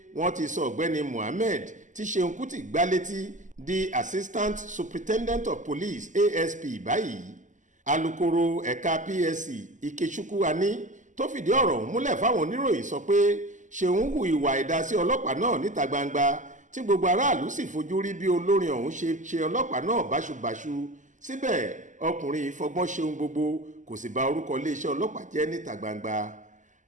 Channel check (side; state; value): left; late; 0.37 ms